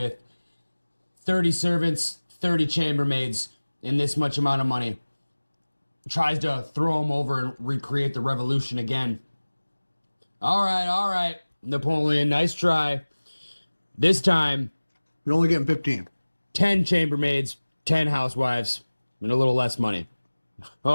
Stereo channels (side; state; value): both; inverted; correlation -1.00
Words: 30 servants, 30 chambermaids, and this much amount of money. Tries to throw him over and recreate the revolution again. All right, Napoleon, nice try. This time, You're only getting 15. 10 chambermaids, 10 housewives, and a little less money.